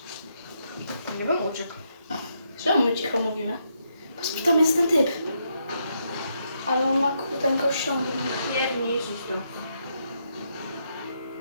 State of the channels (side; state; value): both; inverted; correlation -0.78